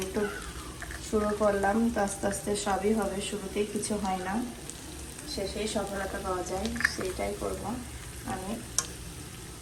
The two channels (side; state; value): both; identical; correlation 1.00